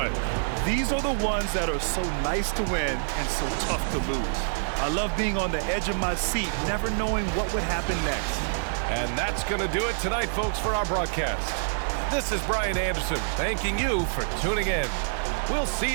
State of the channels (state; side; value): silent; left; digital silence